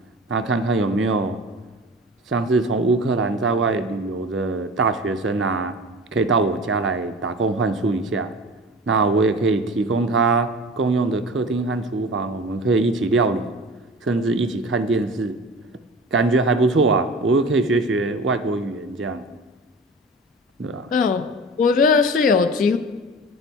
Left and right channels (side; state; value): both; normal; correlation 0.37